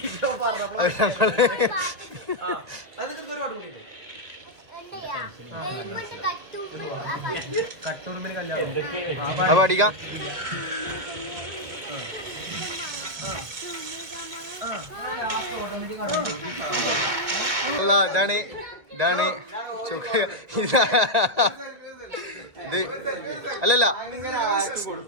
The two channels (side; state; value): left; late; 1.8 ms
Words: കട്ടൂർമിന് കല്യാണം പാടിക്ക. അല്ല, ഇതാണ് ഇത് അല്ലല്ല,